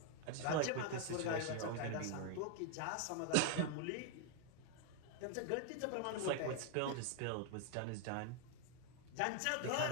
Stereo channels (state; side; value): different; both; correlation 0.01